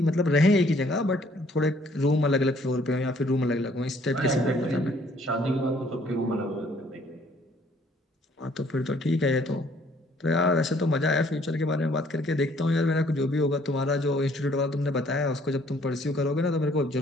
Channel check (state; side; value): normal; both; correlation 0.62